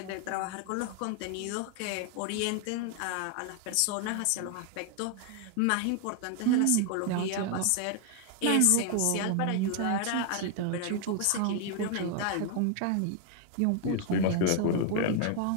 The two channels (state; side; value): different; both; correlation 0.00